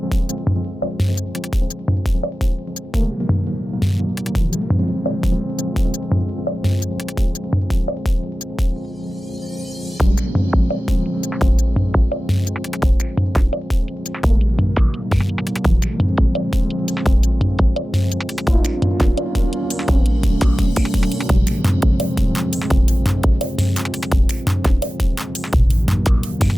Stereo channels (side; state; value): both; normal; correlation 0.96